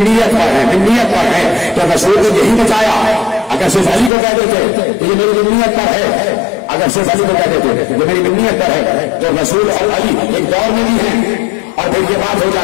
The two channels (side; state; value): right; drops out; at 4.1 s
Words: پر ہے، ملت پر ہے. تو رسول نے یہی بتایا. اگر صرف علی کو کہہ دیتے تو یہ میری ملت پر ہے، اگر صرف علی کو کہہ دیتے تو یہ میری ملت پر ہے، تو رسول اور علی ایک دور میں بھی ہیں. اور پھر یہ بات ہو